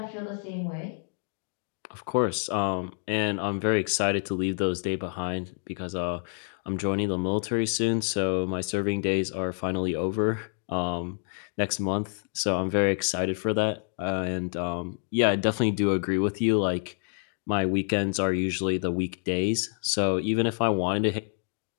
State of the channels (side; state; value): right; silent; 58 dB below the other